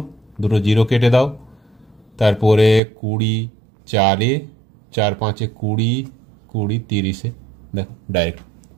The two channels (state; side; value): drops out; left; at 2.8 s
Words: দুটো জিরো কেটে দাও, তারপরে 20 4-এ, 4 5-এ 20, 20 30-এ, দেখো ডাইরেক্ট